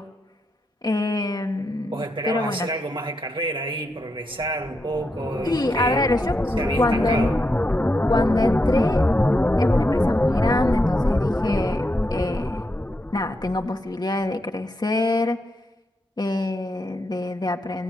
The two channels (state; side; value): normal; both; correlation 0.84